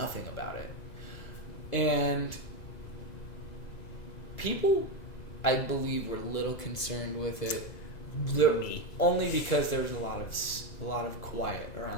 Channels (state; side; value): late; right; 2.0 ms